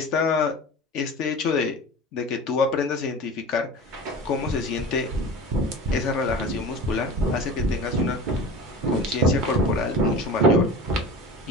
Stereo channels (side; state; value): both; normal; correlation 0.35